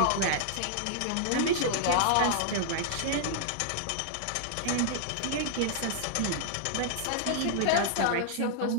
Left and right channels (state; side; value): different; both; correlation -0.01